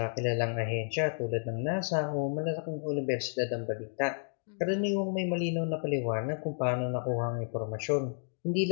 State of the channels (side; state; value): right; silent; digital silence